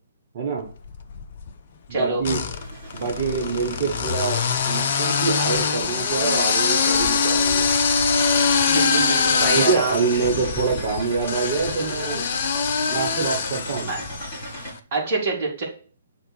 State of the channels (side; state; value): both; inverted; correlation -0.57